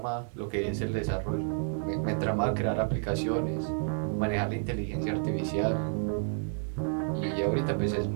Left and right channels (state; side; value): silent; left; 58 dB below the other